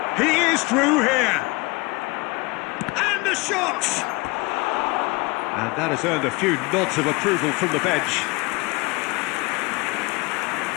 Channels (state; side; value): quieter; right; 25.5 dB